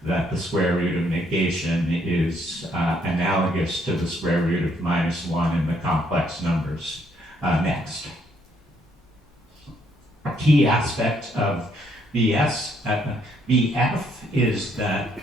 that the square root of negation is analogous to the square root of -1 in the complex numbers. Next. A key aspect of BF is that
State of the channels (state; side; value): normal; both; correlation 0.70